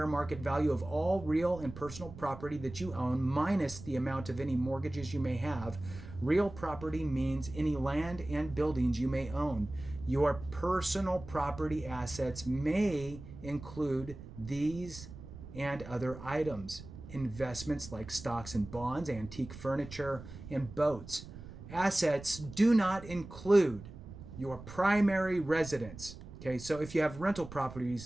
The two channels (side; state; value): right; noise; rumble, 14 dB below the sound